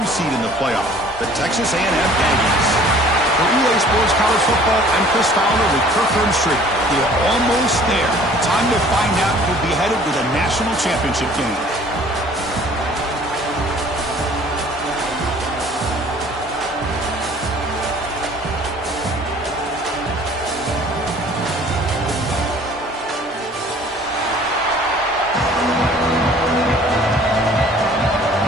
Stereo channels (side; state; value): both; normal; correlation 0.52